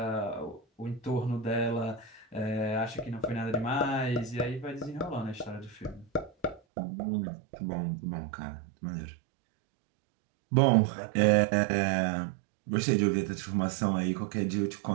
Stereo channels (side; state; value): left; drops out; at 6.6 s